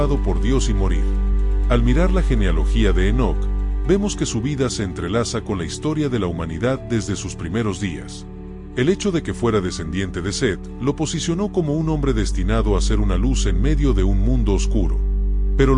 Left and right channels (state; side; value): identical; both; correlation 1.00